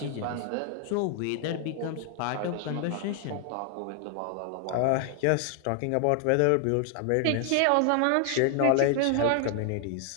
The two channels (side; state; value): both; different; correlation 0.00